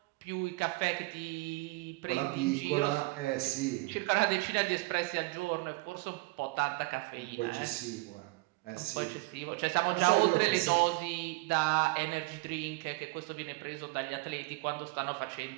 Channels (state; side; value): quieter; left; 23.7 dB